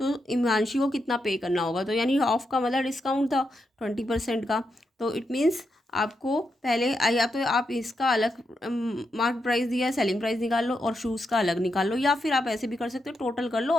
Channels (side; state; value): both; normal; correlation 0.84